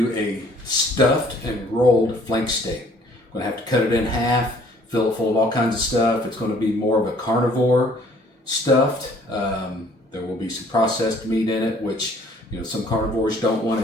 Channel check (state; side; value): normal; both; correlation 0.58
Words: a stuffed and rolled flank steak. I'm going to have to cut it in half, fill it full of all kinds of stuff. It's going to be more of a carnivore stuffed. There will be some processed meat in it, which some carnivores don't